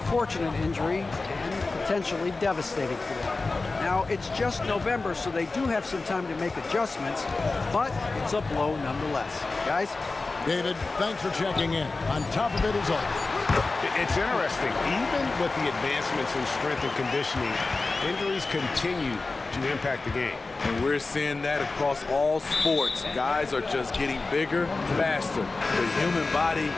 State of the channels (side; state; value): right; quieter; 3.6 dB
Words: injury and potentially devastating for them. Now, it's just November, so they do have some time to make adjustments, but it's a blow nonetheless. Guys? David, thanks for checking in. On top of it as always. It's interesting. Even with the advancements in strength and conditioning, injuries continue to impact the game. And we're seeing that across all sports. Guys are just getting bigger, faster. The human body